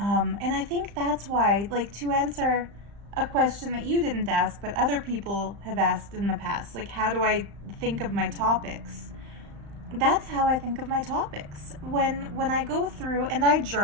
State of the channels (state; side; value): late; left; 35 ms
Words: I think that's why, like, to answer a question that you didn't ask, but other people have asked in the past, like, how do I think of my topics? That's how I think of my topics. When I go through and I